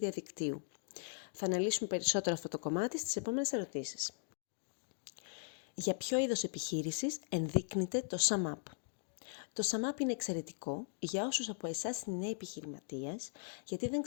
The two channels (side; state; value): right; silent; digital silence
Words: Θα αναλύσουμε περισσότερο αυτό το κομμάτι στις επόμενες ερωτήσεις. Για ποιο είδος επιχείρησης ενδείκνυται το SumUp? Το SumUp είναι εξαιρετικό για όσους από εσάς είναι νέοι επιχειρηματίες, γιατί δεν